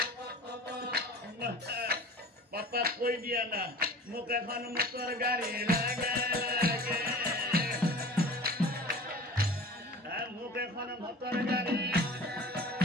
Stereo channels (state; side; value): normal; both; correlation 0.40